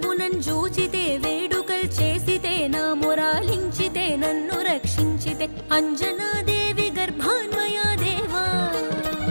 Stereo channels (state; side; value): inverted; both; correlation -1.00